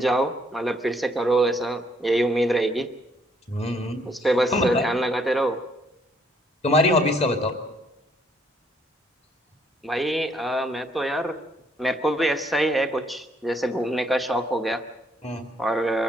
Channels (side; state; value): both; normal; correlation 0.68